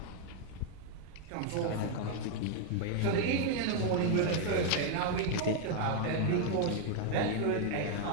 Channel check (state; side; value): different; both; correlation 0.00